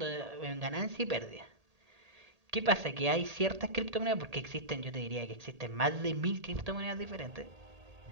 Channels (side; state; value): left; late; 1.8 ms